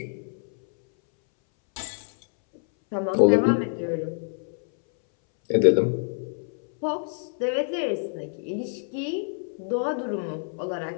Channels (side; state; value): right; silent; 61 dB below the other